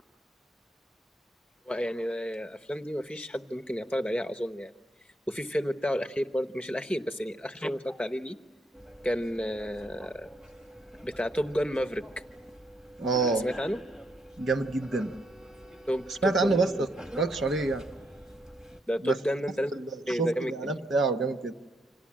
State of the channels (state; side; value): normal; both; correlation 0.76